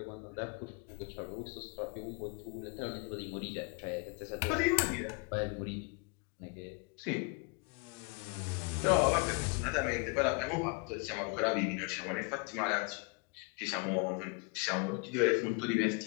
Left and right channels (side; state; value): right; quieter; 30.2 dB